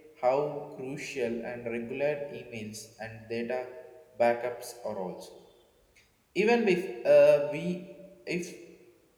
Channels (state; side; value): identical; both; correlation 1.00